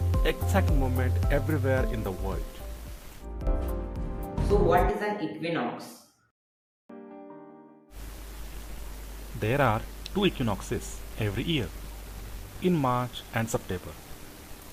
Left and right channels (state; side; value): identical; both; correlation 1.00